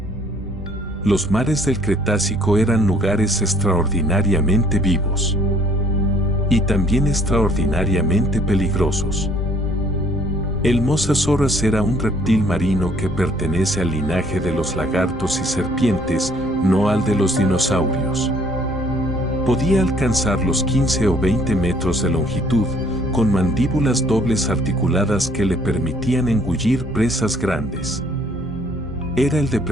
Los mares del Cretácico eran lugares extraordinariamente vivos. Y también extraordinariamente peligrosos. El Mosasaurus era un reptil marino que pertenece al linaje de los lagartos y serpientes, no al de los dinosaurios. Podía alcanzar los 15 o 20 metros de longitud, con mandíbulas dobles articuladas que le permitían engullir presas grandes. Era el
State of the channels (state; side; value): normal; both; correlation 0.60